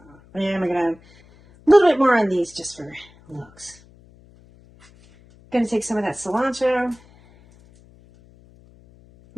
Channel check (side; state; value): left; noise; hum, 27 dB below the sound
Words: yeah, I'm gonna have a little bit more on these just for looks. Gonna take some of that cilantro.